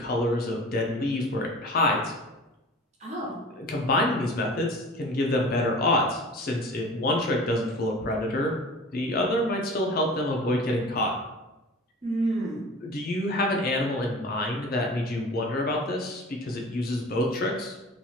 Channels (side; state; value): both; normal; correlation 0.40